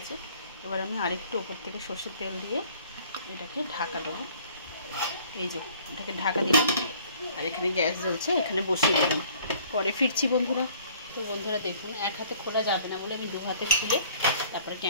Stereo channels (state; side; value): inverted; both; correlation -0.55